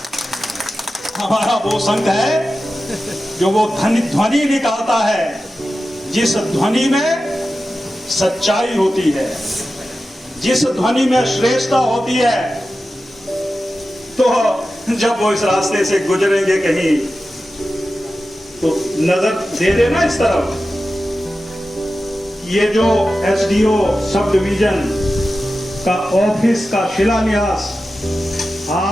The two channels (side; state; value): both; normal; correlation 0.93